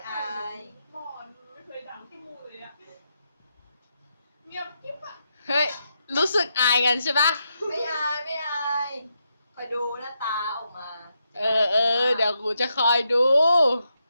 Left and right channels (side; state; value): both; inverted; correlation -0.82